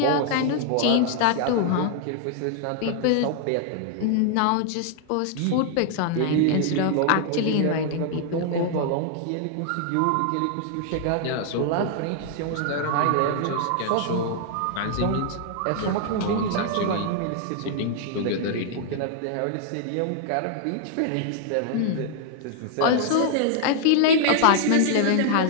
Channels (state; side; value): different; both; correlation 0.00